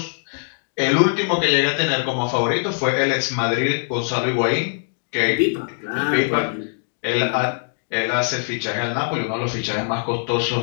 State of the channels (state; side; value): silent; right; 64 dB below the other